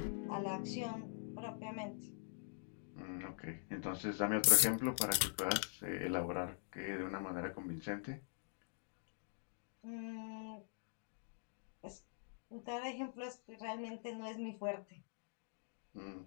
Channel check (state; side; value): silent; right; digital silence